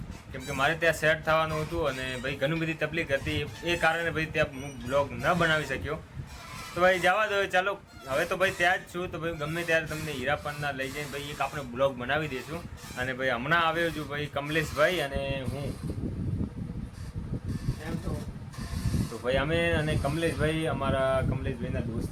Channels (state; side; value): identical; both; correlation 1.00